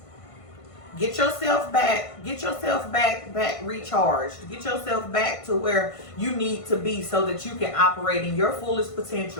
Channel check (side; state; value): right; late; 1.5 ms